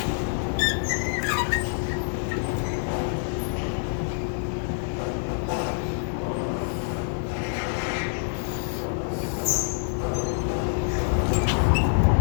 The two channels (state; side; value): silent; right; digital silence